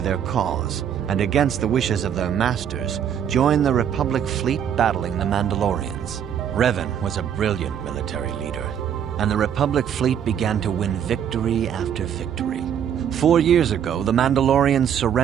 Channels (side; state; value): left; quieter; 8.9 dB